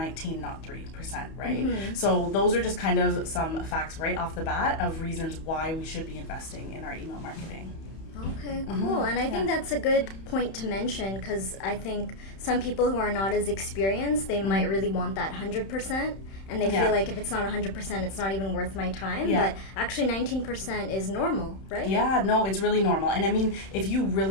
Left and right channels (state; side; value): late; right; 31 ms